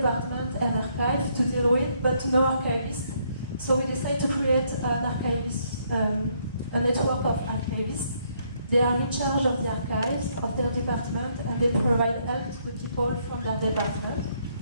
and archives to deal with, but no archivists. So we decided to create an archivist, a network of archivists. They are in charge of the archives of their department, and they provide help to the people from their department.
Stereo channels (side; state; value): both; inverted; correlation -0.71